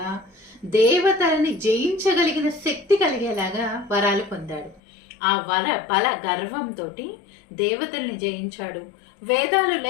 దేవతలని జయించగలిగిన శక్తి కలిగేలాగా వరాలు పొందాడు. ఆ బల గర్వంతో దేవతల్ని జయించాడు. వేదాలు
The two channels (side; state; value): right; drops out; at 4.8 s